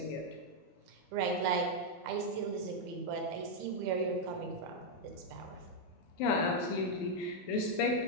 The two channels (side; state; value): both; normal; correlation -0.01